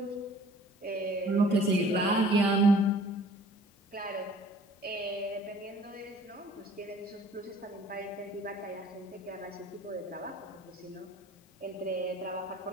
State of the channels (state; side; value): normal; both; correlation 0.51